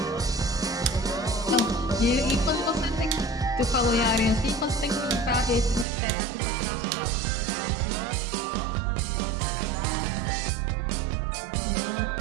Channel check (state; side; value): drops out; left; at 5.9 s